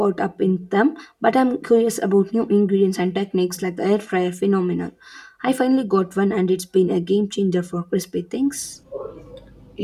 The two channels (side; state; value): both; identical; correlation 1.00